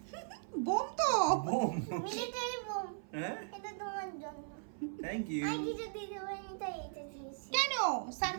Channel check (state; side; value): silent; left; 53 dB below the other